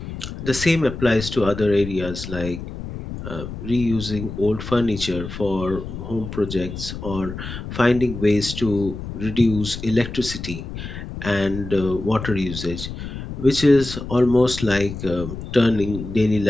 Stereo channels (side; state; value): left; noise; rumble, 9 dB below the sound